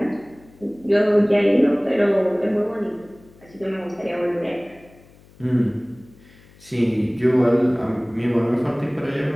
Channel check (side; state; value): left; noise; hum, 26 dB below the sound